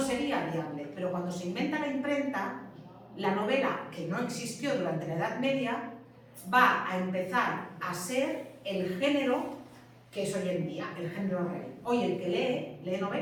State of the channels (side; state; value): both; identical; correlation 1.00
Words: viable, pero cuando se inventa la imprenta, la novela, que no existió durante la Edad Media, va a empezar a ser el género que es hoy en día, el género rey. Hoy el que lee